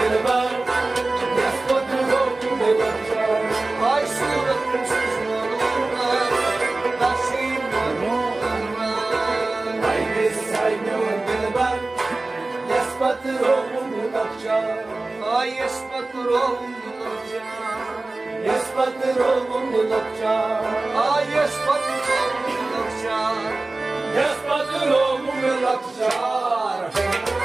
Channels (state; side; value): quieter; left; 3.2 dB